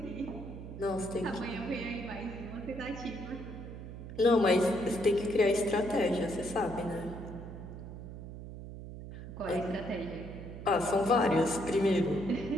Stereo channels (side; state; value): right; noise; hum, 11 dB below the sound